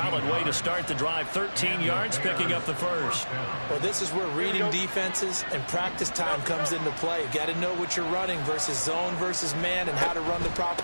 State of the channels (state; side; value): inverted; both; correlation -1.00